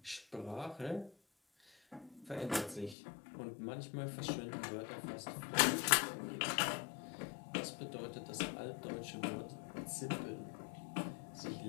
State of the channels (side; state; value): right; drops out; at 3.0 s